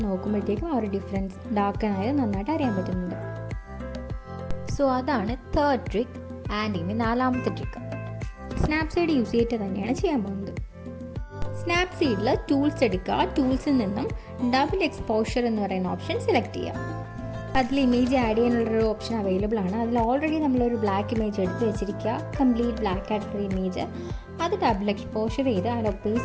നോക്കുമ്പോഴത്തേക്കും ആ ഒരു ഡിഫറൻസ് ഡാർക്കൻ ആയത് നന്നായിട്ട് അറിയാൻ പറ്റുന്നുണ്ട്. സോ അതാണ് 3rd ട്രിക്ക്. ആൻഡ് ഇനി 4ാമത്തെ ട്രിക്ക് സ്നാപ്സീഡ് യൂസ് ചെയ്തിട്ട് തന്നെയാണ് ചെയ്യാൻ പോകുന്നത്. സ്നാപ്സീഡിൽ ടൂൾസ് എടുക്കുക. ടൂൾസിൽ നിന്നും ഡബിൾ എക്സ്പോഷർ എന്ന് പറയുന്ന ഓപ്ഷൻ സെലക്ട് ചെയ്യുക. അതിൽ ഇമേജ് ആഡ് ചെയ്യാനുള്ളൊരു ഓപ്ഷൻ അവൈലബിൾ ആണ്. അതിൽ ഓൾറെഡി നമ്മളൊരു ബ്ലാക്ക് ഇമേജ് എടുത്ത് വെച്ചിരിക്കുക, കംപ്ലീറ്റ് ബ്ലാക്ക് ആയിട്ടുള്ള ഇമേജ്. അത് ഡബിൾ എക്സ്പോഷർ ചെയ്ത് അതിൻ്റെ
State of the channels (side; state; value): both; identical; correlation 1.00